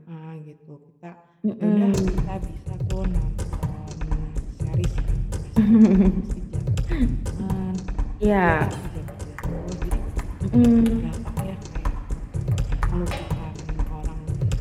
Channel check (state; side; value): identical; both; correlation 1.00